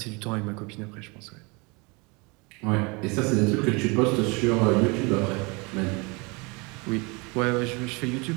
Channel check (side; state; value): left; quieter; 28.5 dB